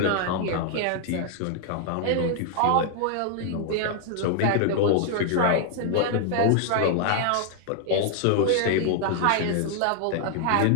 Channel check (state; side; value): different; both; correlation 0.00